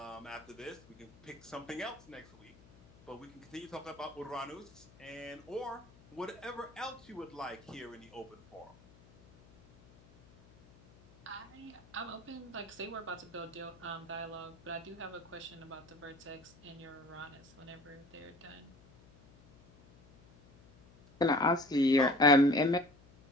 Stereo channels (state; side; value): noise; left; hum, 24 dB below the sound